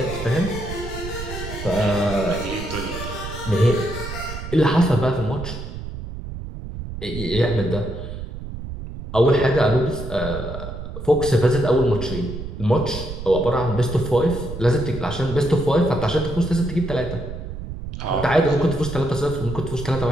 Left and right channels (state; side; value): noise; right; rumble, 9 dB below the sound